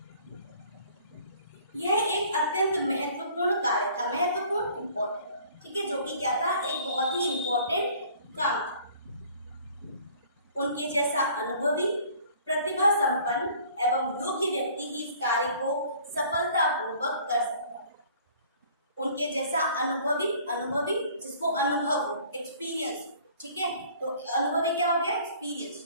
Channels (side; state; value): both; inverted; correlation -0.53